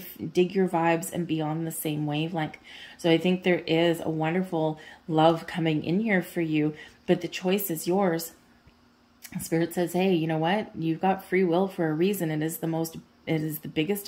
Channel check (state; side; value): identical; both; correlation 1.00